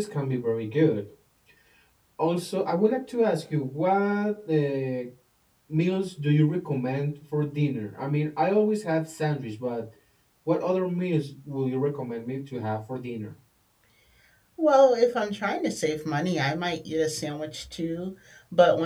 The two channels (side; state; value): both; identical; correlation 1.00